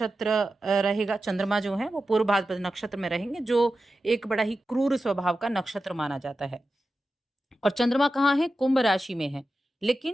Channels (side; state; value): both; normal; correlation 0.92